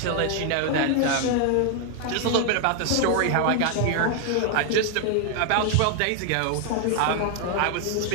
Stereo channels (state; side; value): different; both; correlation 0.00